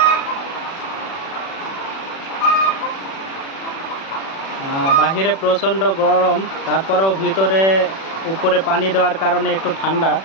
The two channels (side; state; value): right; late; 36 ms